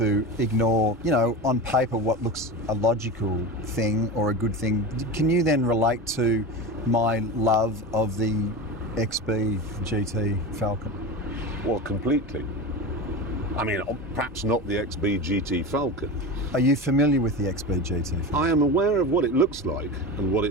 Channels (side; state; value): both; normal; correlation 0.26